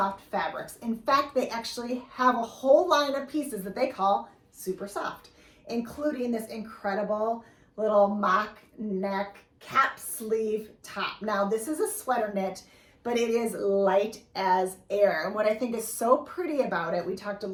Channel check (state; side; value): identical; both; correlation 1.00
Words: fabrics. In fact, they actually have a whole line of pieces that they call super soft, including this incredible little mock neck cap sleeve top. Now, this is a sweater knit, but it is light as air. And what I think is so pretty about it, we talked a